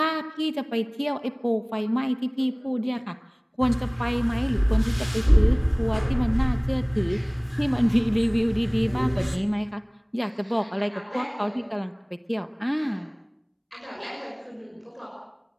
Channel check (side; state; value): both; identical; correlation 1.00